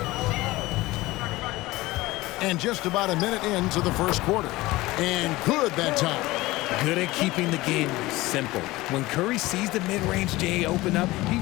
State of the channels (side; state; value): right; quieter; 19.3 dB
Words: And just about a minute into the first quarter. And good that time. Good at keeping the game simple. When Curry sees the mid-range J open up, he